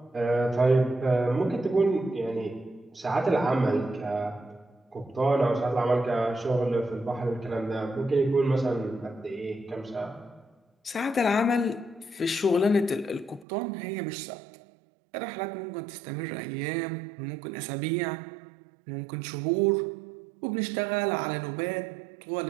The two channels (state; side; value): drops out; left; at 13.5 s